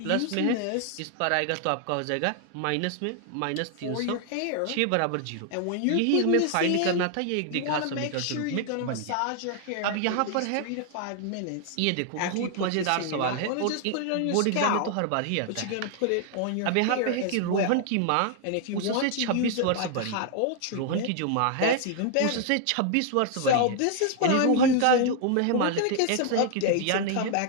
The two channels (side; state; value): both; different; correlation 0.00